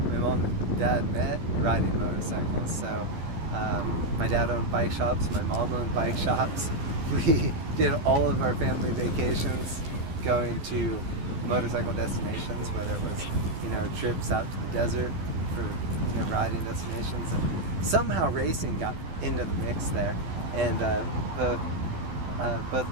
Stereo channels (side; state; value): left; late; 12 ms